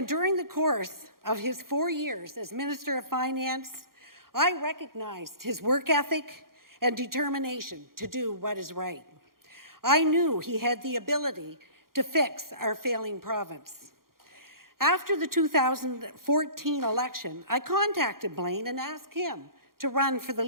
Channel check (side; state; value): left; late; 0.92 ms